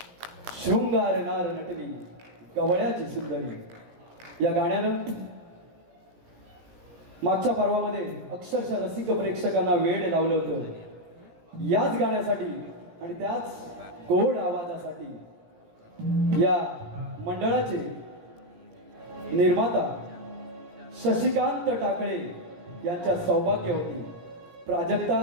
शृंगार नार नटली गवळ्याची सुंदरी, या गाण्यानं मागच्या पर्वामध्ये अक्षरशः रसिक प्रेक्षकांना वेड लावलं होतं. याच गाण्यासाठी आणि त्याच गोड आवाजासाठी या मंडळाचे निर्माता शशिकांत टाकळे यांच्या सौभाग्य होती. प्राजक्ता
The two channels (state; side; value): late; left; 17 ms